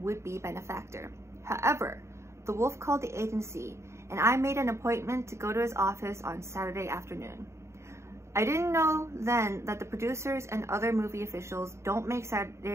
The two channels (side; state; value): left; late; 0.13 ms